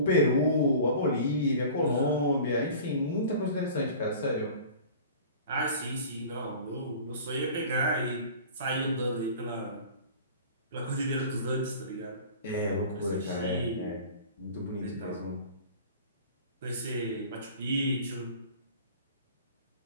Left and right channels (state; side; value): inverted; both; correlation -0.41